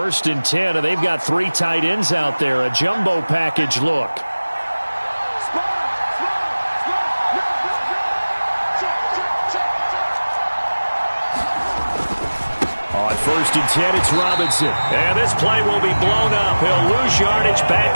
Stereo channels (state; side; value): inverted; both; correlation -1.00